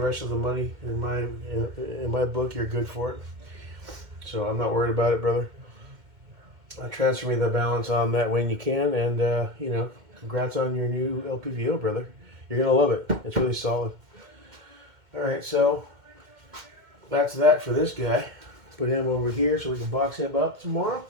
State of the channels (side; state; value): left; late; 2.1 ms